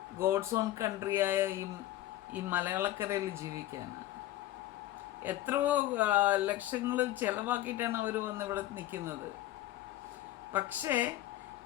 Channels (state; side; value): quieter; right; 14.7 dB